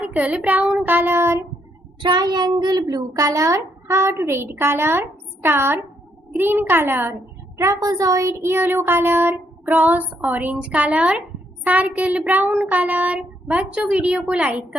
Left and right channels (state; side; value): normal; both; correlation 0.74